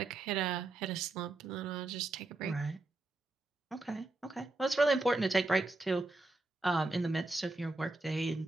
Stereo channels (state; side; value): quieter; left; 3.0 dB